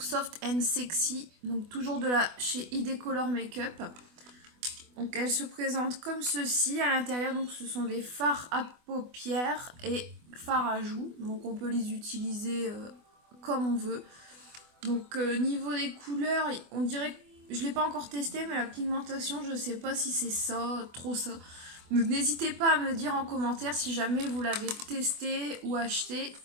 and sexy, donc toujours de la chez ID Color Makeup. Donc elle se présente comme ceci à l'intérieur. Donc ce sont des fards à paupières et fards à joues. Donc on peut les utiliser comme on veut. Donc niveau des couleurs, on dirait que je l'ai pas encore testé, mais la pigmentation, je sais pas si c'est ça, trop ça. Donc n'hésitez pas à me dire en commentaire si jamais vous l'avez testé ou acheté,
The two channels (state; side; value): late; left; 24 ms